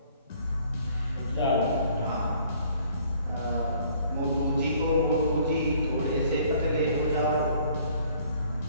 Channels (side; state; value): both; inverted; correlation -0.58